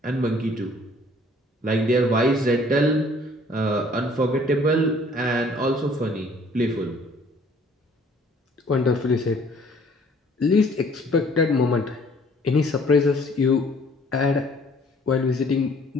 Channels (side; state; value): both; normal; correlation 0.57